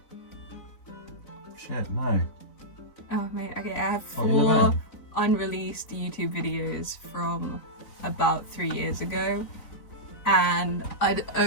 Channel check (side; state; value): right; late; 4.0 ms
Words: Shit, no. Oh, mate, okay, I have 4 unreleased YouTube videos from about 3 years ago. And I'd